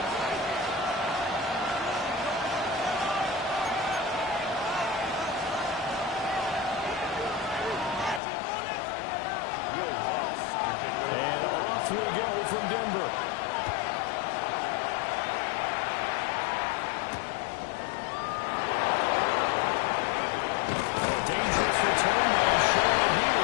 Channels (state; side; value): drops out; right; at 8.2 s